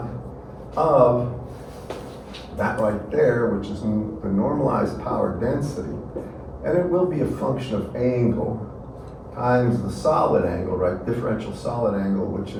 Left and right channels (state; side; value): identical; both; correlation 1.00